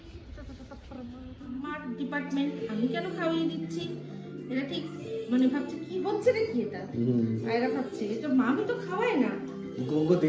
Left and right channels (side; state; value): both; identical; correlation 1.00